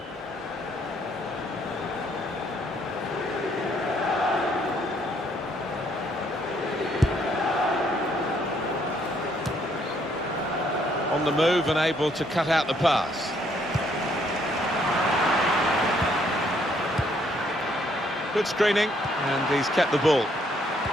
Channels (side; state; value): both; normal; correlation 0.68